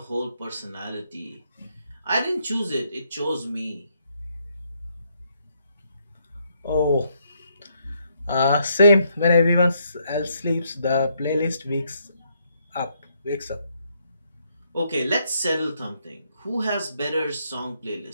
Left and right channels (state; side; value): inverted; both; correlation -0.74